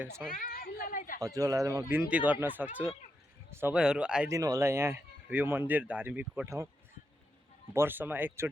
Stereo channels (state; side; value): normal; both; correlation 0.84